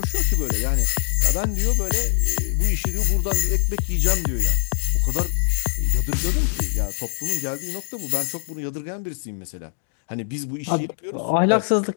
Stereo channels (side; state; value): right; silent; 60 dB below the other